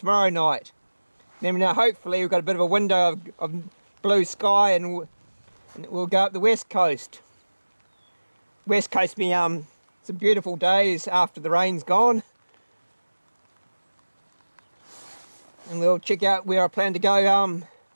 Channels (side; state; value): both; inverted; correlation -1.00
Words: night. Then hopefully we've got a bit of a window of blue sky and we'll go up the west coast. West coast be some beautiful days after the rain's gone. And we'll check out where I plan to go